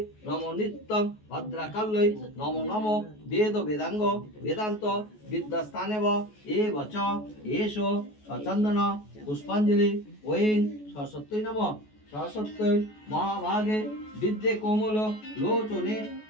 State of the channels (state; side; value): late; right; 14 ms